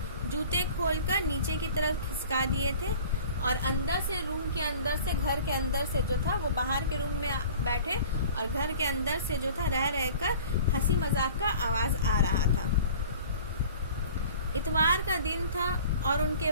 जूते खोलकर नीचे की तरफ खिसका दिए थे और अंदर से, रूम के अंदर से, घर के अंदर से जो था वो बाहर के रूम में बैठे और घर के अंदर से जो था रह रहकर हंसी मजाक का आवाज आ रहा था। इतवार का दिन था और उनके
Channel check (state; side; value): inverted; both; correlation -0.45